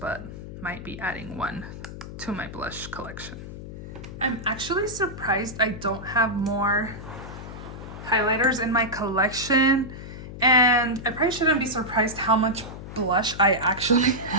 might be adding 1 to my blush collection. I'm actually surprised I don't have more highlighters in my collection, and I probably shouldn't be surprised how much blush I actually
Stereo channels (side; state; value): left; noise; hum, 11 dB below the sound